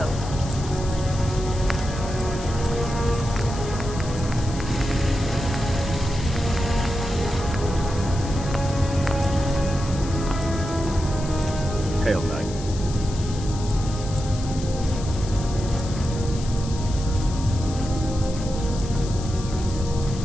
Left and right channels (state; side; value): noise; left; hiss, 14 dB below the sound